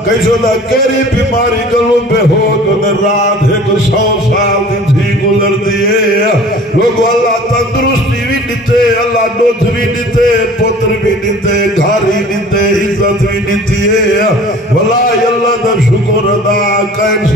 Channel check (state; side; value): normal; both; correlation 0.46